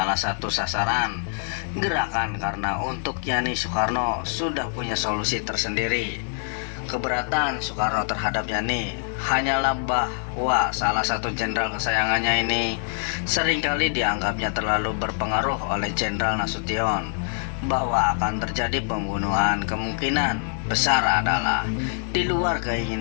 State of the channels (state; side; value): silent; right; digital silence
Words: satu sasaran gerakan, karena untuk Yani Soekarno sudah punya solusi tersendiri. Keberatan Soekarno terhadap Yani hanyalah bahwa salah satu jenderal kesayangannya ini seringkali dianggapnya terlalu berpengaruh oleh Jenderal Nasution, bahwa akan terjadi pembunuhan kemungkinan besar adalah di luar